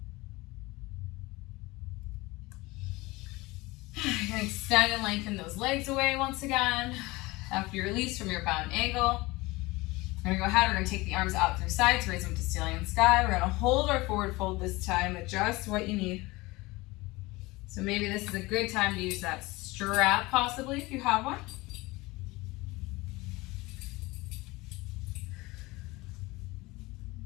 You're going to extend and lengthen those legs away once again. After you release from your bound angle, we're going to go ahead, we're going to take the arms out through sides, raise them to ceiling and sky. We're going to hold our forward fold this time, adjust what you need. So maybe this is a good time to use that strap possibly if you have one.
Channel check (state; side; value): quieter; right; 21.8 dB